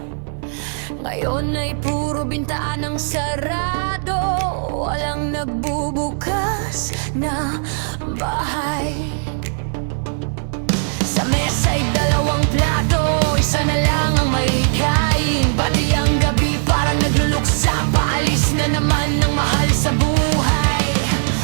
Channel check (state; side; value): silent; left; digital silence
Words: ngayon ay puro bintanang sarado. Walang nagbubukas na bahay. Sa mesa'y dalawang plato, isa na lang ang may kain. Pati ang gabi parang nagluluksa, paalis na naman ng mahal sa buhay.